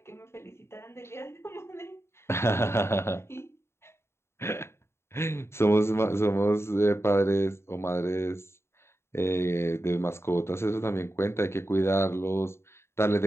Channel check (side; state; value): right; late; 0.12 ms